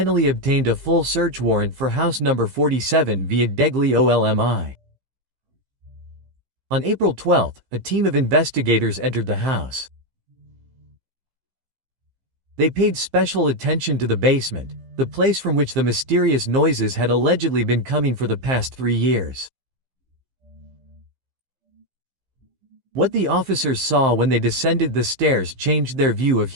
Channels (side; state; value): left; late; 15 ms